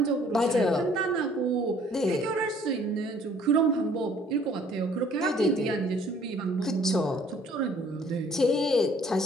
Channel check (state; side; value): normal; both; correlation 0.58